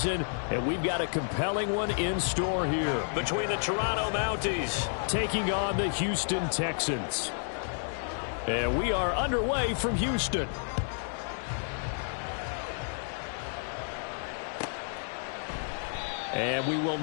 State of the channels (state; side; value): silent; right; digital silence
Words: and we've got a compelling one in store here. Between the Toronto Mounties taking on the Houston Texans. And we are underway from Houston. And we will